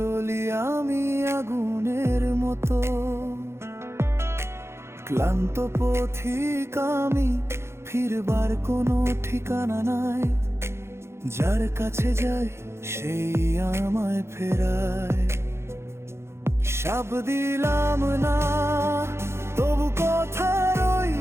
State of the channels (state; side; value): late; left; 0.13 ms